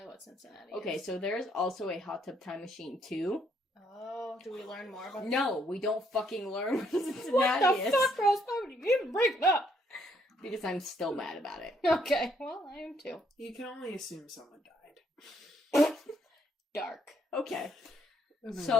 what Cincinnati Okay, is. so there's also a Hot Tub Time Machine 2. Oh, do we learn more about No, we don't fucking learn what Cincinnati What the is. fuck, Rose? Why would you even bring it up? Because I'm still mad about it. Okay, well, I am too. You can only assume someone died. Dark. Okay. Moving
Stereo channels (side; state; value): both; normal; correlation 0.70